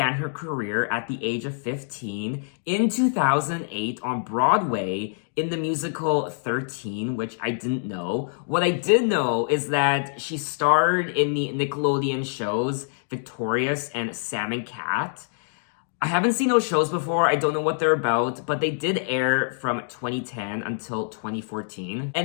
her career at the age of 15 in 2008 on Broadway in the musical 13, which I didn't know. What I did know is that she starred in the Nickelodeon shows Victorious and Sam and Cat. I haven't seen those shows before. I don't know what they're about, but they did air from 2010 until 2014.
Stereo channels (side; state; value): right; silent; digital silence